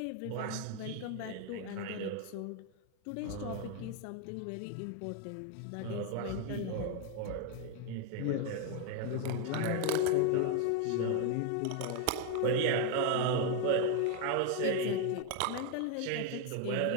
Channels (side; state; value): both; different; correlation 0.01